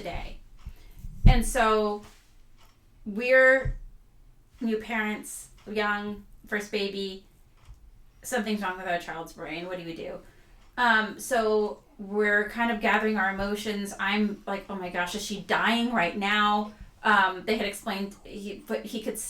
And so we're new parents, young, first baby, something's wrong with our child's brain. What do we do? So we're kind of gathering our emotions. I'm like, oh my gosh, is she dying right now? They had explained, what he could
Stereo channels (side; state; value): both; identical; correlation 1.00